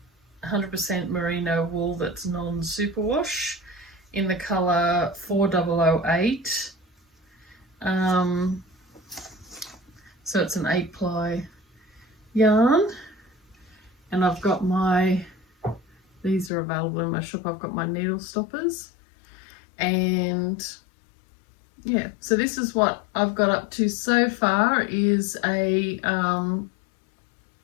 100% merino wool that's non-superwash in the colour 4008. So it's an 8-ply yarn, and I've got these are available in my shop. I've got my needle stoppers, and yeah, so this is what I've got up to so far, is a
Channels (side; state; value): right; drops out; at 16.5 s